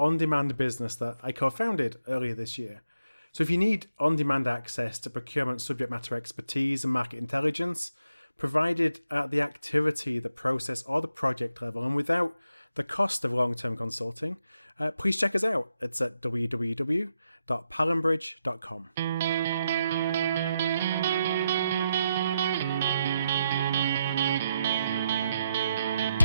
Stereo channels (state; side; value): inverted; both; correlation -0.83